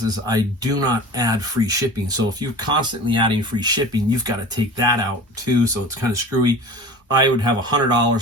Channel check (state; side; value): normal; both; correlation 0.38